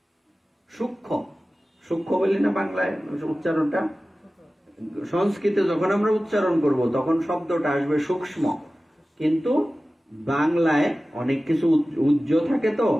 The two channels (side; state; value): both; normal; correlation 0.96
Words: সূক্ষ্ম, সূক্ষ্ম বলি না বাংলায় উচ্চারণটা, সংস্কৃতে যখন আমরা উচ্চারণ করব তখন শব্দটা আসবে সূক্ষ্ম, কিন্তু বাংলায় অনেক কিছু উজ্জ থাকে, তো